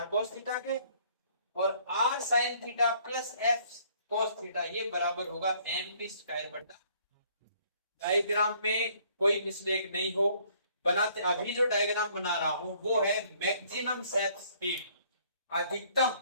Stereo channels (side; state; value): both; inverted; correlation -0.62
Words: cos थीटा के, और r sin theta plus f cos theta ये बराबर होगा mv²/r। डायग्राम में कोई मिस्टेक नहीं हो बनाते। अभी जो डायग्राम बना रहा हूं वो है मैक्सिमम सेट स्पीड, अधिकतम